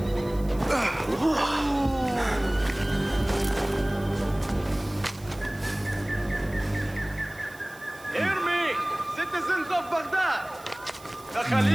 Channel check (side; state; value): right; noise; hiss, 22 dB below the sound